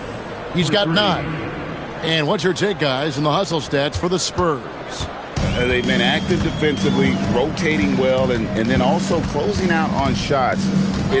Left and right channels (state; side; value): identical; both; correlation 1.00